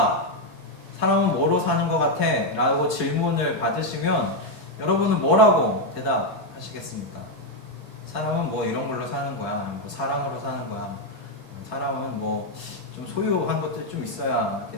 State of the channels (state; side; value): late; left; 1.4 ms